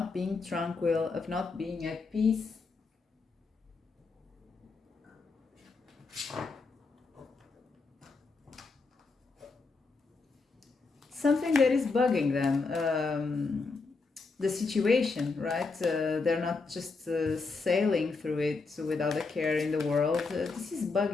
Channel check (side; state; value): right; quieter; 4.2 dB